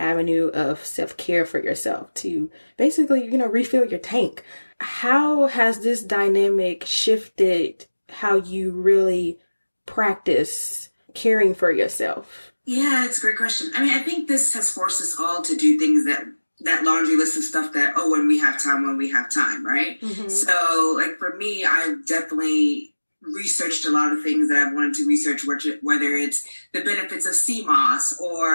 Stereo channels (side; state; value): both; inverted; correlation -1.00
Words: of self-care for yourself to basically, refill your tank. How has this dynamic shifted how you really practice caring for yourself? Yeah, it's a great question. I mean, I think this has forced us all to do things that laundry list of stuff that, when we have time, right? Mm-hmm. So like for me, I've definitely researched a lot of things that I've wanted to research, whether it's the benefits of CMOS